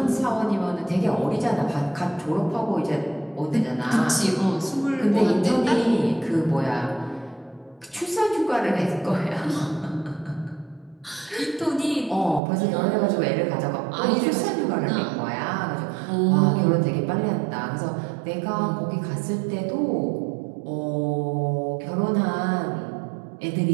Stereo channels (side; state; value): left; drops out; at 12.4 s